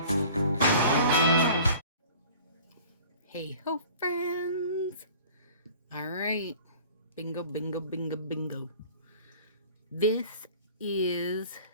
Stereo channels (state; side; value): inverted; both; correlation -0.46